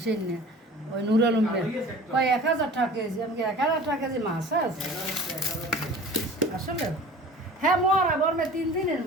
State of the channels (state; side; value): normal; both; correlation 0.42